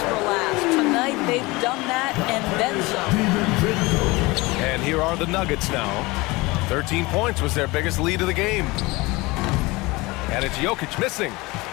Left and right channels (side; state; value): right; quieter; 22.8 dB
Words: for last. Tonight, they've done that and then some. And here are the Nuggets now. 13 points was their biggest lead of the game. And it's Jokic missing.